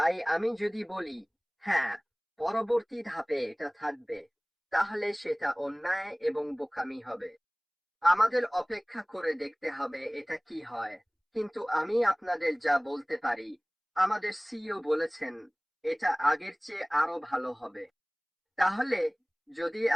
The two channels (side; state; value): both; identical; correlation 1.00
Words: আমি যদি বলি হ্যাঁ, পরবর্তী ধাপে এটা থাকবে, তাহলে সেটা অন্যায় এবং বোকামি হবে। আমাদের অপেক্ষা করে দেখতে হবে এটা কি হয়। কিন্তু আমি আপনাদের যা বলতে পারি, আমাদের সিইও বলেছেন এটা আগের চেয়ে আরো ভালো হবে। তাহলে যদি